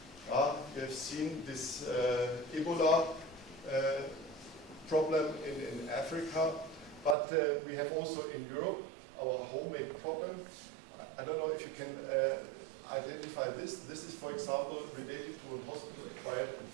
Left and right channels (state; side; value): drops out; left; at 7.2 s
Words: You have seen this Ebola problem in Africa, but we have also in Europe our homemade problem. I don't know if you can identify this. This is, for example, related to a hospital-acquired